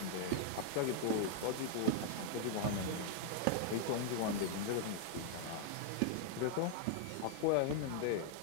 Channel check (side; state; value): both; different; correlation 0.00